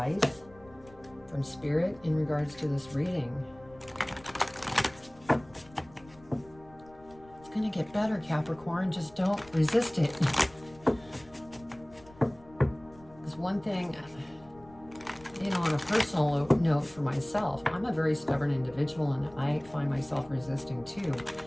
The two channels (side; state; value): left; noise; rumble, 24 dB below the sound